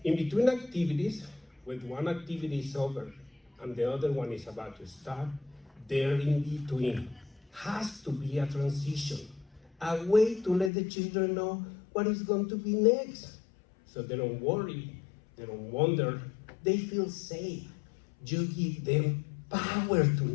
in between activities, when one activity is over and the other one is about to start, there in between has to be a transition, a way to let the children know what is going to be next. So they don't worry, they don't wonder, they feel safe. You give them power to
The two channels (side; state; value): right; drops out; at 10.7 s